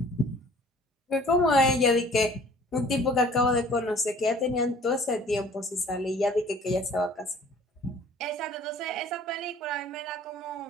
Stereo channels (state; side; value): normal; both; correlation 0.51